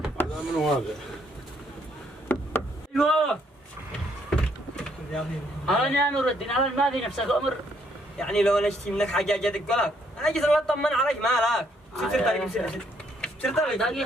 هذا من هذا؟ ايوه انا يا نور الدين، انا ما في نفسك امر، يعني لو انا اشتي منك حاجه اجي ادق لك، انا اجي اطمن عليك، مالك؟ سر طريق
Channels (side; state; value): both; normal; correlation 0.70